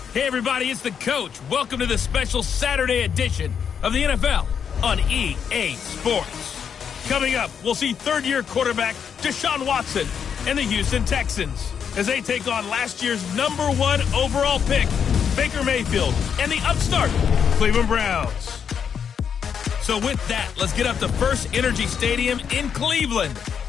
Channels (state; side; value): quieter; right; 7.4 dB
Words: Hey everybody, it's the coach. Welcome to the special Saturday edition of the NFL on EA Sports. Coming up, we'll see third-year quarterback Deshaun Watson and the Houston Texans as they take on last year's #1 overall pick, Baker Mayfield, and the upstart Cleveland Browns. So with that, let's get up to First Energy Stadium in Cleveland